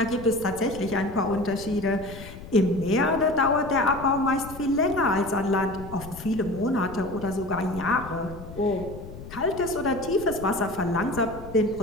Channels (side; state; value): left; noise; rumble, 14 dB below the sound